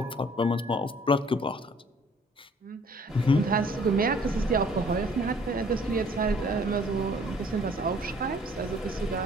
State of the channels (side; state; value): both; normal; correlation 0.56